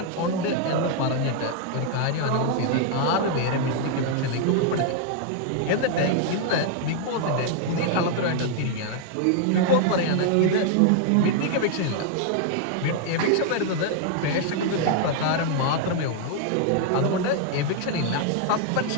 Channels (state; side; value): different; both; correlation 0.00